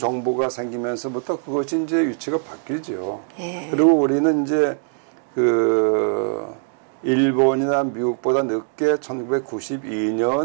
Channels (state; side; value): silent; left; digital silence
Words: 생기면서부터 그것이 이제 위치가 바뀌죠. 그리고 우리는 이제 그 일본이나 미국보다 늦게